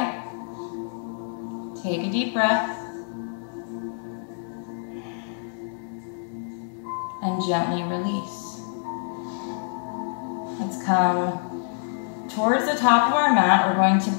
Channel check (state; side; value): silent; right; digital silence